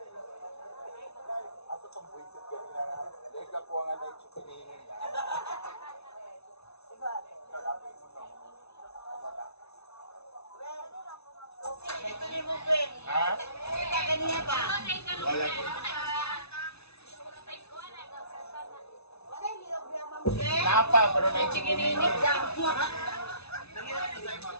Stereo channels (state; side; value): late; right; 0.80 ms